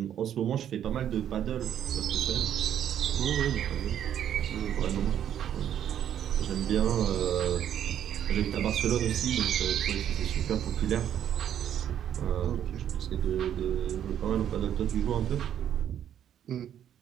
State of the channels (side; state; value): left; quieter; 10.0 dB